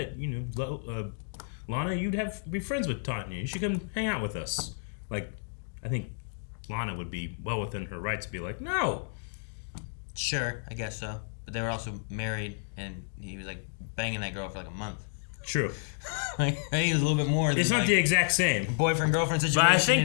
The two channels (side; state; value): right; silent; digital silence